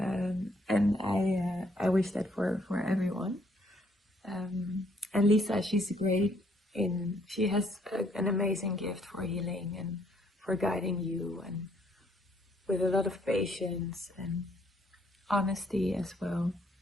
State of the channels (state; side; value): normal; both; correlation 0.67